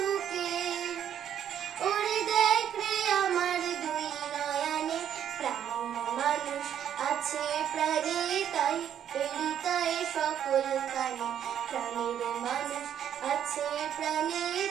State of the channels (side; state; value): left; quieter; 9.7 dB